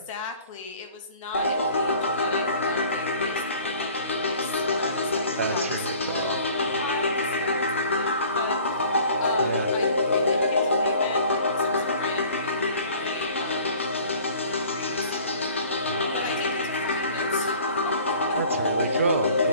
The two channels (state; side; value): inverted; both; correlation -0.49